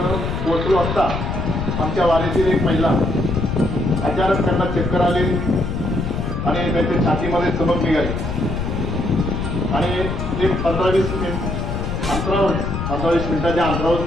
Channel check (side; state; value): left; noise; rumble, 3 dB below the sound